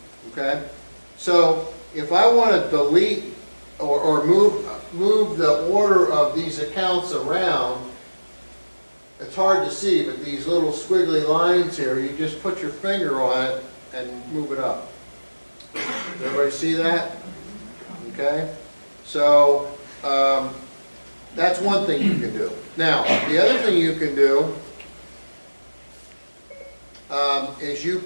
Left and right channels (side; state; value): both; inverted; correlation -1.00